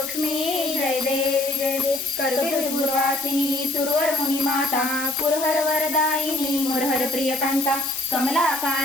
जय देवी जय देवी कर्पूरवासिनी सुरवर मुनी माता पुरहर वरदायिनी मुरहर प्रियकांता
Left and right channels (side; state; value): left; noise; hiss, 6 dB below the sound